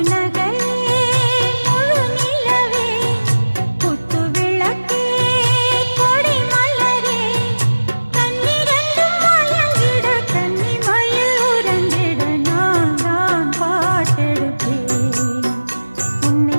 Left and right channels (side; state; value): both; inverted; correlation -1.00